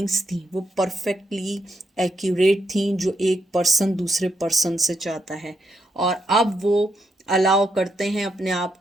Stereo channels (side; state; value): both; normal; correlation 0.80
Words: थी वो परफेक्टली एक्यूरेट थी, जो एक पर्सन दूसरे पर्सन से चाहता है। और अब वो अलाउ करते हैं, अपने आप